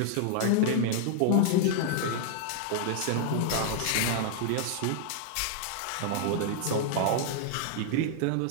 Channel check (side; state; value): both; different; correlation -0.01